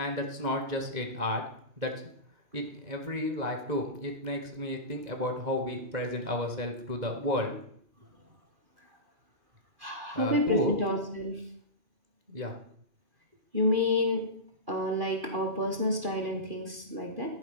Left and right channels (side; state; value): left; late; 2.4 ms